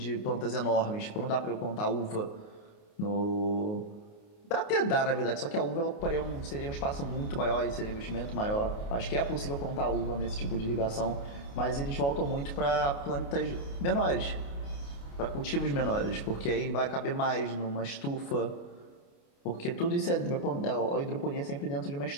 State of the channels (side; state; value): right; late; 28 ms